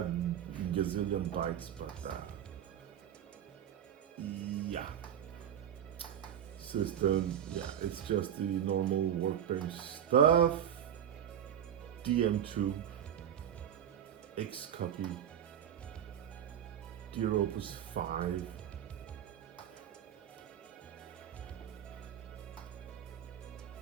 gazillion bytes, but yeah. System, yeah, it's just the normal workbench stuff. DM2, X copy, Dear Opus 5.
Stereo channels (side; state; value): left; quieter; 9.5 dB